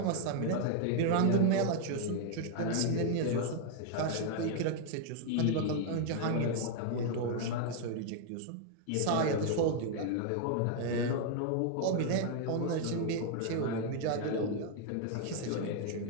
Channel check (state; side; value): different; both; correlation 0.00